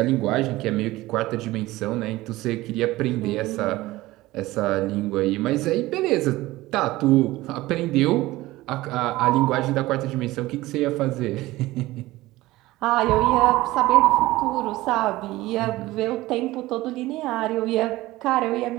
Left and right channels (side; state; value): left; quieter; 18.1 dB